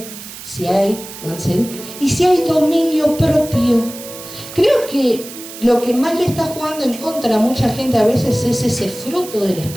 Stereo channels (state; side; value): noise; right; hiss, 13 dB below the sound